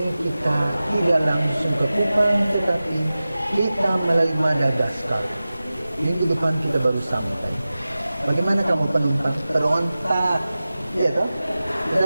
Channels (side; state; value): both; inverted; correlation -0.96